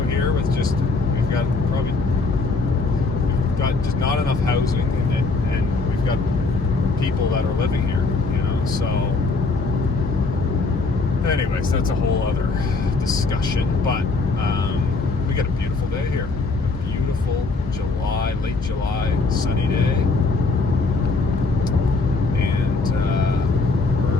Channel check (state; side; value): quieter; right; 3.7 dB